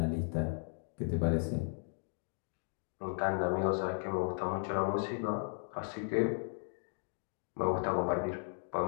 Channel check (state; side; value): silent; right; 54 dB below the other